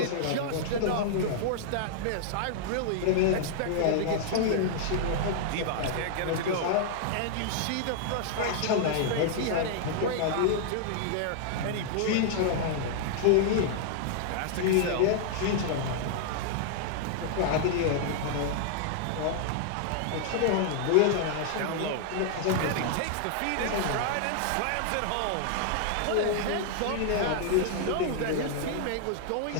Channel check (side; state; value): both; different; correlation -0.01